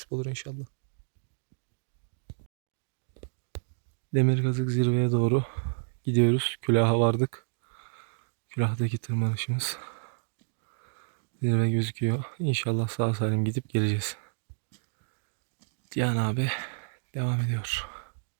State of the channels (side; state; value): left; silent; digital silence